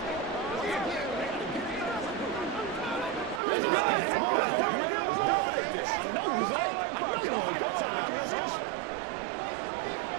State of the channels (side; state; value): left; drops out; at 3.4 s